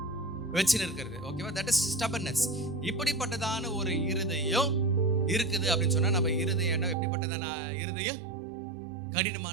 வச்சுன்னு இருக்கிறது. ஓகேவா? That is stubbornness. இப்படிப்பட்டதான ஒரு இருதயம் இருக்குது அப்படின்னு சொன்னா நம்ம இருதயம் என்ன எப்படிப்பட்டதான இருதயம்?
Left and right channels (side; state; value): left; drops out; at 7.0 s